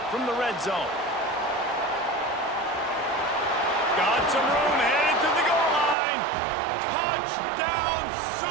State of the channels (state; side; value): drops out; left; at 6.0 s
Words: from the red zone. Got some room, headed to the goal line. Touchdown